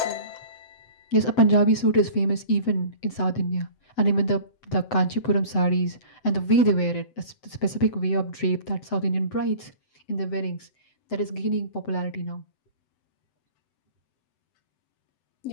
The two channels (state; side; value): late; right; 7.8 ms